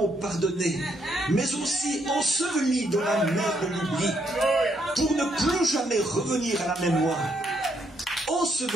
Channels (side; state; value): both; normal; correlation 0.74